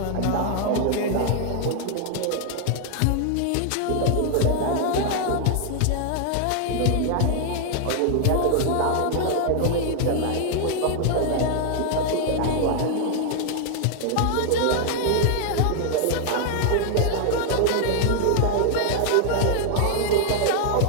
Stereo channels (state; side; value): different; both; correlation 0.00